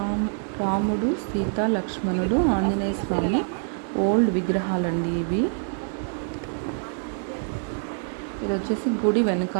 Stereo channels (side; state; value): left; silent; 61 dB below the other